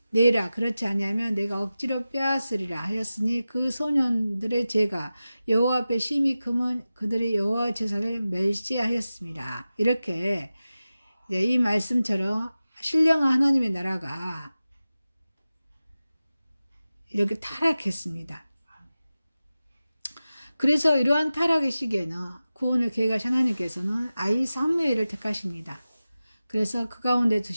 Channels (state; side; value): inverted; both; correlation -0.95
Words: 내라. 그렇지 아니하면 내가 억지로 빼앗으리라 하였으니 그 소년들의 죄가 여호와 앞에 심히 크면 그들이 여호와 제사를 멸시하였습니다. 이렇게 이 말씀처럼 신령한 하나님의 나라가 이렇게 타락했습니다. 그래서 이러한 타락의 시기에는 구원을 계획하신 하나님께서는 아이 사무엘을 택하십니다. 그래서 그 가운데